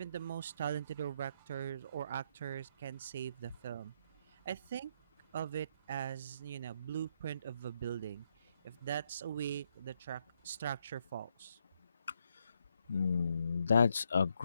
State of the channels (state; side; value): inverted; both; correlation -0.76